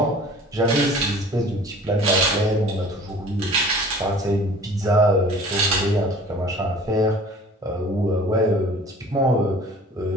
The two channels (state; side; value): normal; both; correlation 0.46